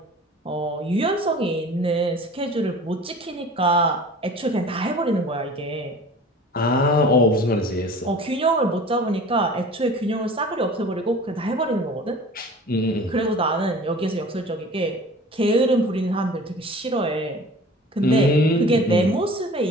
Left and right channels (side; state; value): both; normal; correlation 0.43